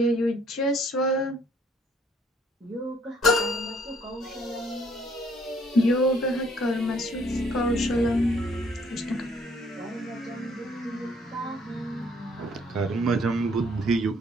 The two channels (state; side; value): normal; both; correlation 0.63